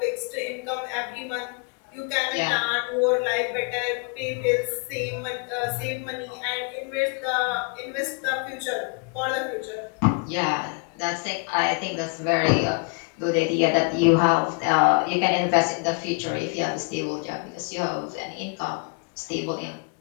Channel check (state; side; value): quieter; right; 33.7 dB